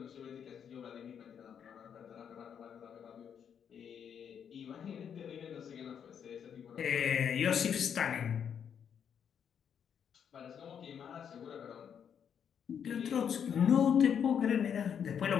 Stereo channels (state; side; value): quieter; right; 8.0 dB